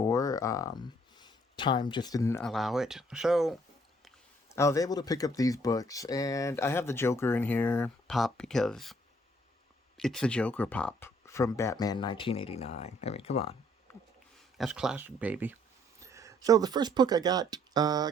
Time just didn't allow it, so I was able to pick up these books, and I have the Joker in here, pop, because it's the Joker pop from Batman 1989. I mean, come on. That's classic, baby. So the first book I got,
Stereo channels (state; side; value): normal; both; correlation 0.64